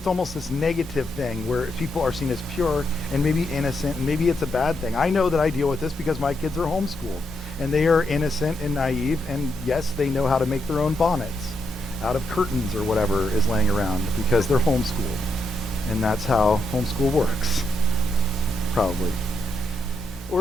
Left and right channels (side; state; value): both; normal; correlation 0.80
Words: almost this negative thing where people are seen as pure and maybe innocent, and maybe it's a bad thing. I know that I deal with this because my kids are homeschooled, and they are innocent and naive, and yes, they know how to make their own bonnets out of curtains or whatever is laying around because they're homeschooled. And that's how homeschool works, probably.